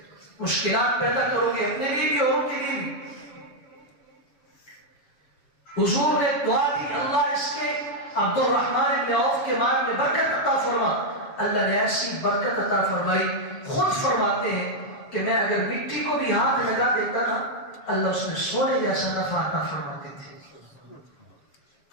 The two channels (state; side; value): late; right; 7.3 ms